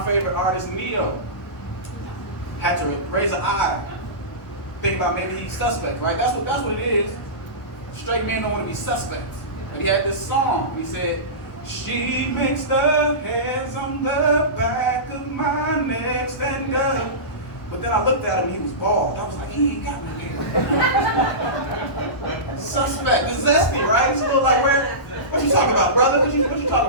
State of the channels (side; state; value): right; late; 1.1 ms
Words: favorite artists, Neo, had to raise an eye. Think about maybe he's suspect, right? That's what it is. Straight men don't want to be suspects. And he had this song. He said, "She makes the hairs on the back of my neck stand up." But then I looked at him, he was bald. I was like, he ain't got no hair. Suspect. It's zesty, right? It's a little like, what you talking about, brother? What you